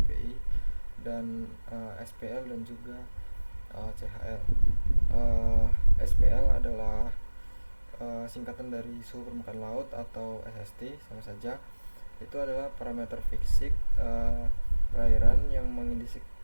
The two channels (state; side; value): inverted; both; correlation -1.00